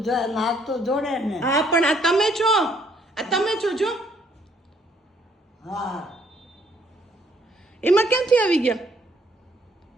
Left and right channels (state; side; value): normal; both; correlation 0.66